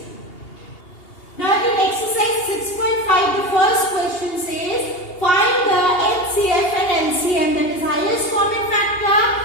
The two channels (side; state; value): right; late; 2.8 ms